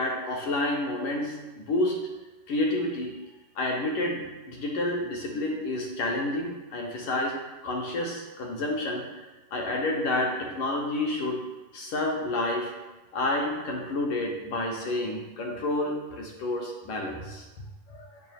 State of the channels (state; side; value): late; right; 11 ms